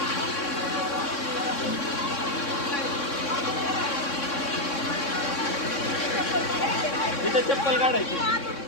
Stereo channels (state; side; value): late; right; 3.6 ms